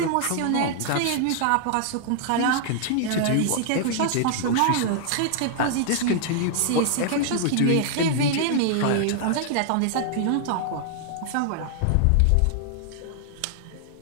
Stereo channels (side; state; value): both; different; correlation -0.01